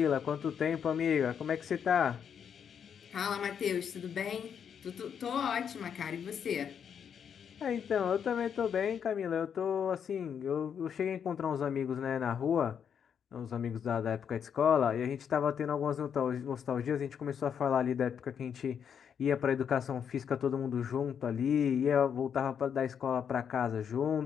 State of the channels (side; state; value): right; quieter; 7.7 dB